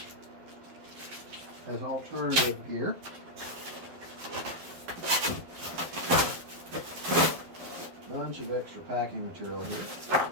as alternative gear. Bunch of extra packing material here.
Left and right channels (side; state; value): left; late; 12 ms